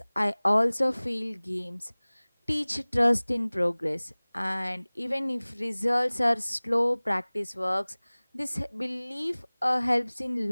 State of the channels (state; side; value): inverted; both; correlation -1.00